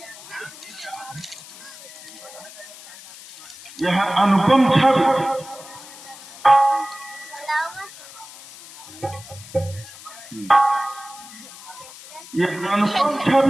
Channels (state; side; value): noise; left; hiss, 17 dB below the sound